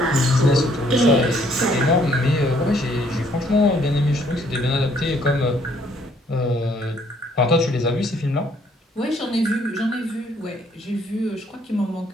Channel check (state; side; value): normal; both; correlation 0.65